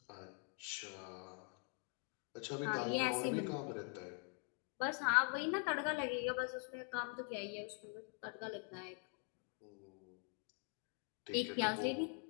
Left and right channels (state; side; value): quieter; right; 39.2 dB